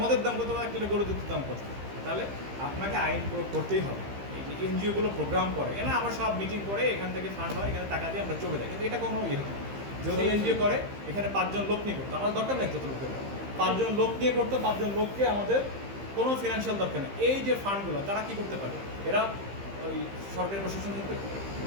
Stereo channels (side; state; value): left; late; 15 ms